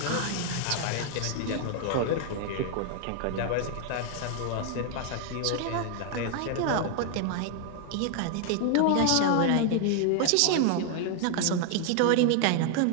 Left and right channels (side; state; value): both; different; correlation 0.00